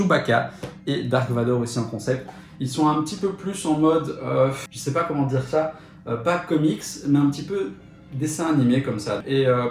et Dark Vador aussi en concept. Ils sont un petit peu plus en mode, je sais pas comment dire ça, pas comics mais un petit peu dessin animé comme ça. Et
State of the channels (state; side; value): identical; both; correlation 1.00